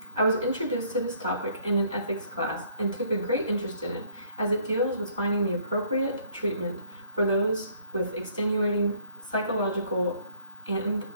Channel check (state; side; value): inverted; both; correlation -0.62